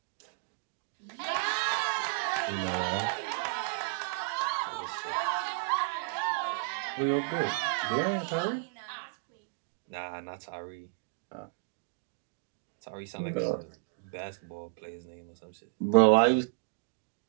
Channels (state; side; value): silent; left; digital silence